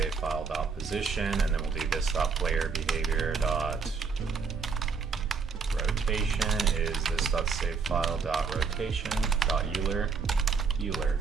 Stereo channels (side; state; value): left; quieter; 5.4 dB